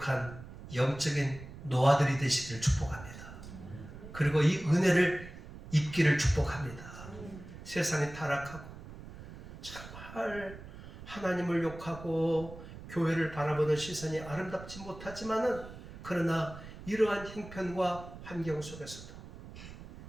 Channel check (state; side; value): noise; right; rumble, 14 dB below the sound